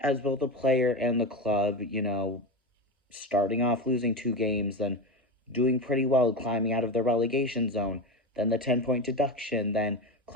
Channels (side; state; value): both; normal; correlation 0.20